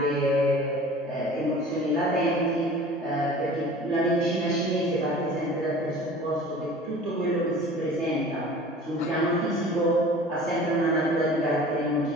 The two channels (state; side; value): normal; both; correlation 0.43